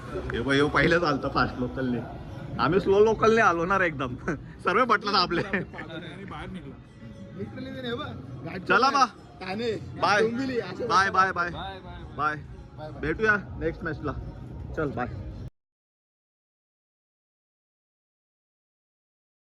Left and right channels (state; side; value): identical; both; correlation 1.00